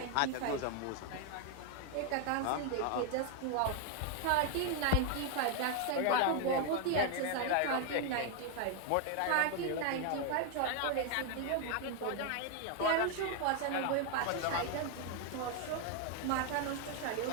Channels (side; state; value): both; different; correlation 0.01